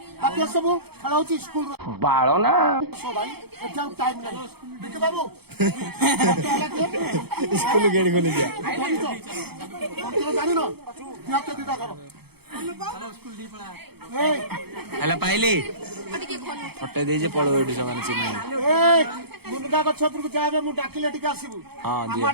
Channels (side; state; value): left; late; 0.96 ms